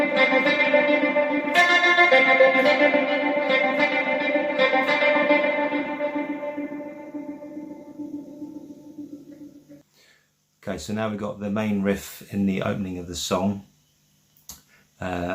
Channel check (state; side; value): identical; both; correlation 1.00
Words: Okay, so now we've got the main riff in the opening of the song,